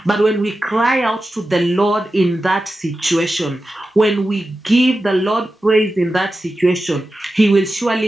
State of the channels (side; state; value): both; normal; correlation 0.92